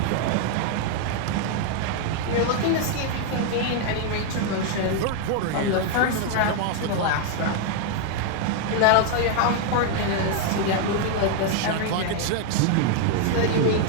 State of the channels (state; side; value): different; both; correlation 0.00